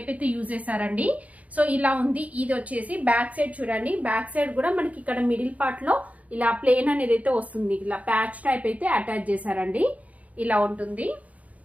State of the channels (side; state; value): left; late; 0.070 ms